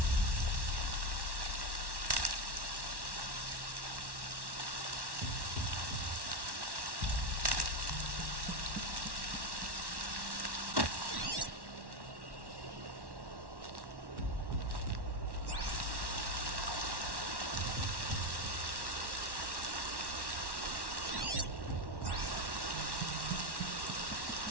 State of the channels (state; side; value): late; left; 1.1 ms